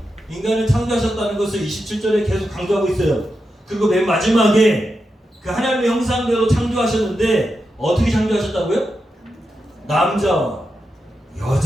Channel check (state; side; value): normal; both; correlation 0.88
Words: 인간을 창조하셨다는 것을 27절에 계속 강조하고 있어요. 그리고 맨 마지막에 그 하나님의 형상대로 창조하셨는데 어떻게 창조하셨다고요? 남자와